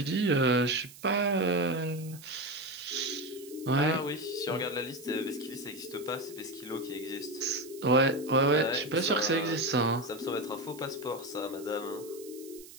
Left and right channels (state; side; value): noise; right; hiss, 18 dB below the sound